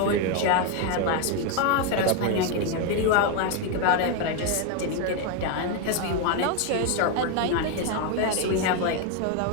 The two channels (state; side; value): different; both; correlation 0.01